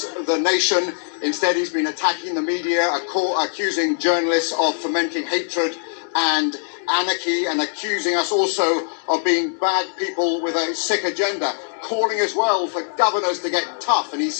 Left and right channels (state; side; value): silent; right; digital silence